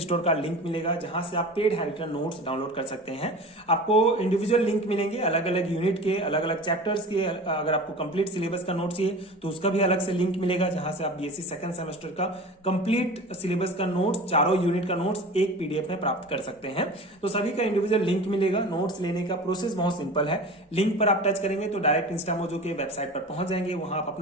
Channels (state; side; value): normal; both; correlation 0.35